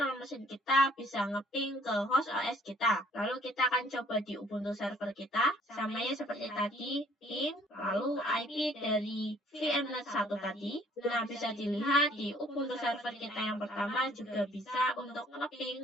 machine kita bisa ngeping ke host OS kita. Lalu kita akan coba di Ubuntu server kita. Samanya seperti tadi, ping, lalu IP dari VMnet 1 tadi. Nah, bisa dilihat di Ubuntu server kita yang pertama juga bisa untuk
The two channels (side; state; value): both; normal; correlation 0.59